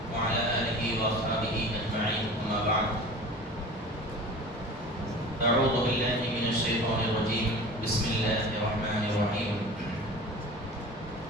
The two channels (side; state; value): both; normal; correlation 0.38